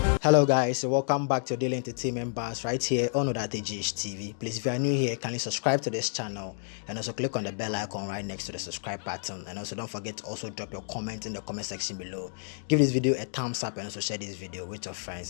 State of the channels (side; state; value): right; silent; digital silence